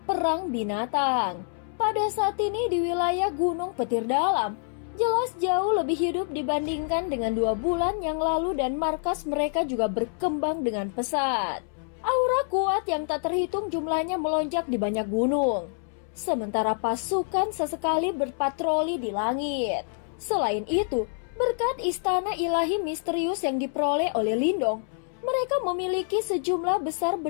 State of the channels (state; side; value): silent; right; 60 dB below the other